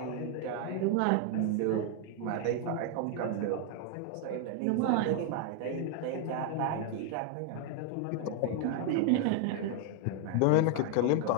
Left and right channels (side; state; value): both; different; correlation 0.00